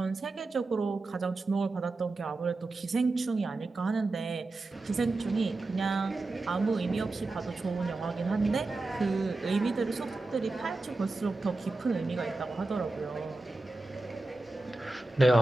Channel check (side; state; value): left; quieter; 3.2 dB